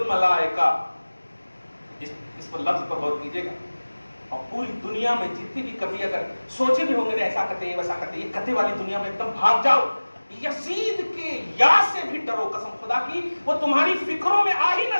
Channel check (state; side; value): inverted; both; correlation -1.00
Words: اس پر لفظ پر غور کیجئے گا، اور پوری دنیا میں جتنی بھی کبھی اگر سوچے بھی ہوں گے ایسا کرتے ہیں ویسا کرتے ہیں، یہ کتے والی دنیا میں ایک دم بھاگ جاؤ، یزید کے یا سے بھی ڈرو، قسم خدا کی وہ تمہاری فکروں میں آ ہی نہ